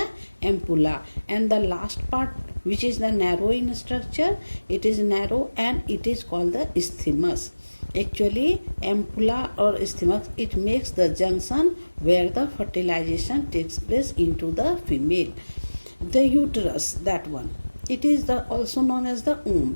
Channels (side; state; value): both; inverted; correlation -1.00